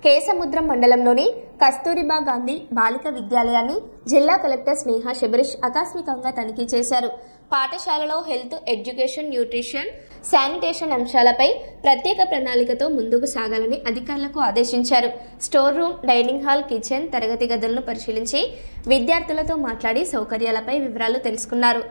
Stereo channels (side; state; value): both; inverted; correlation -1.00